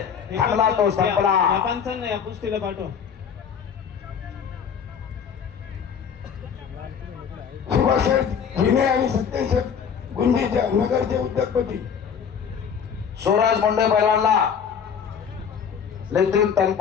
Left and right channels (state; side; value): quieter; right; 7.2 dB